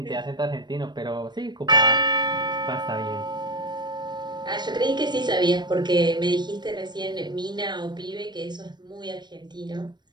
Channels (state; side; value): late; left; 0.21 ms